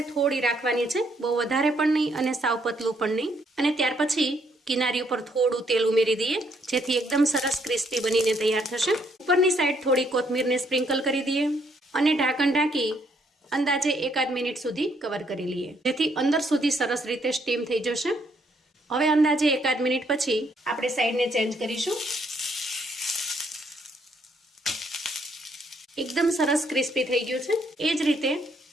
થોડી રાખવાની છે, બહુ વધારે પણ નહીં અને સાવ પતલું પણ નહીં. અને ત્યાર પછી કિનારી ઉપર થોડું તેલ ઉમેરી દઈએ, જેથી એકદમ સરસ ક્રિસ્પી બનીને તૈયાર થશે. ઉપરની સાઈડ થોડી કોથમીરને સ્પ્રિંકલ કરી દઈએ અને ઢાંકણ ઢાંકી અંદાજે 1-8 મિનિટ સુધી કવર કરી લઈએ, જેથી અંદર સુધી સરસ રીતે સ્ટીમ થઈ જશે. હવે અંદાજે 1-8 મિનિટ પછી આપણે સાઈડને ચેન્જ કરીશું. એકદમ સરસ ક્રિસ્પી થઈ ગયું છે. એ જ રીતે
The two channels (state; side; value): normal; both; correlation 0.70